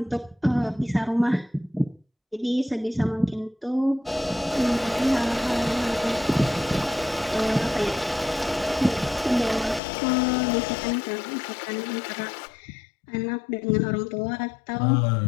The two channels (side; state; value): right; drops out; at 9.8 s